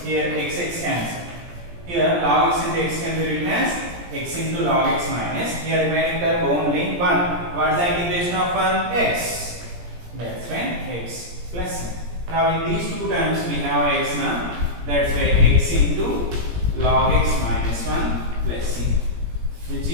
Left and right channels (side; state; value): left; late; 17 ms